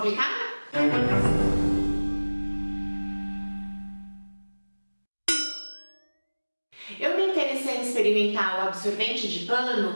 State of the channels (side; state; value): both; inverted; correlation -1.00